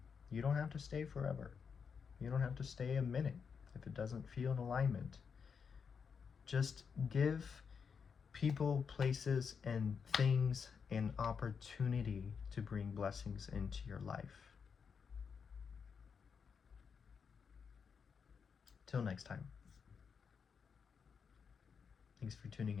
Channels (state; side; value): quieter; right; 6.2 dB